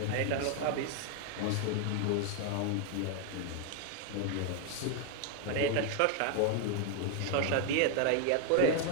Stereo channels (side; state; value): both; different; correlation 0.01